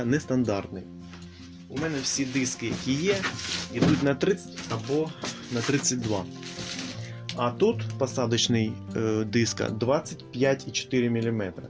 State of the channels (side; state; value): both; identical; correlation 1.00